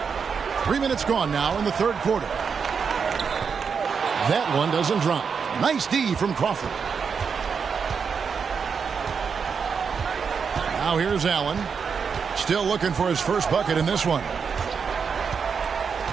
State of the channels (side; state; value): left; quieter; 6.1 dB